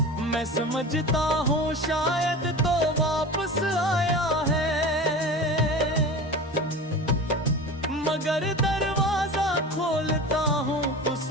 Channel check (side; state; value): both; normal; correlation 0.32